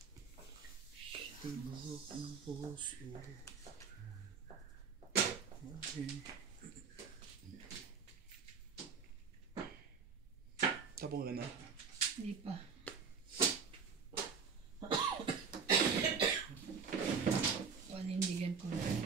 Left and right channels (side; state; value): left; quieter; 5.7 dB